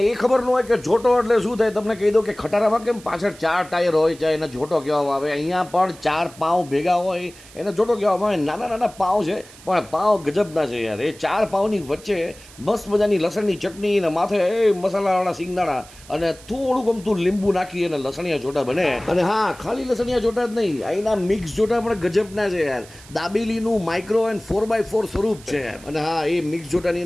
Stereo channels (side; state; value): right; noise; hiss, 21 dB below the sound